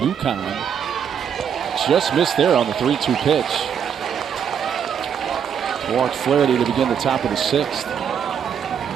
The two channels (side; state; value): left; quieter; 7.9 dB